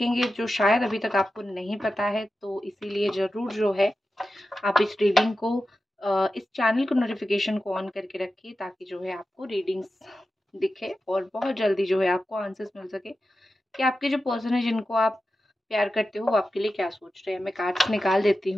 जो शायद अभी तक आपको नहीं पता है, तो इसीलिए ज़रूर जो है आप इस रीडिंग को इस चैनल को नोटिफिकेशन को ऑन करके रखिए, ताकि जो है आपको रीडिंग्स दिखे और बहुत जल्दी जो है आपको आंसर्स मिल सके कि आपके जो पर्सन है जिनको आप प्यार करते हो वो आपके लिए क्या सोच रहे हैं। मैं कार्ड्स निकाल देती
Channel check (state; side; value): normal; both; correlation 0.92